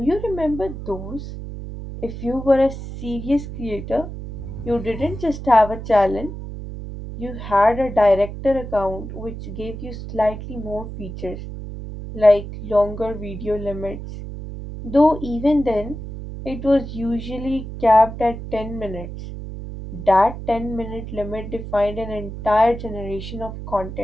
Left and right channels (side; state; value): right; noise; hum, 9 dB below the sound